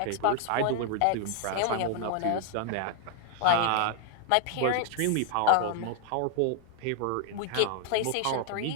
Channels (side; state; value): both; different; correlation 0.00